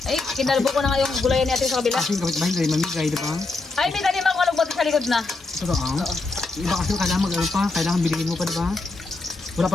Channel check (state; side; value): quieter; right; 3.5 dB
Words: Ay, kinalbo ko na nga yung gulayan ni ate sa kabila. Kasi yung kapitbahay, hindi mamigay, di ba? Ay, may tanim ako alugbote sa likod na. Ito ang. Iba kasi kailangan mag-ano pa, kailangan bilhin mo pa, di ba? Wala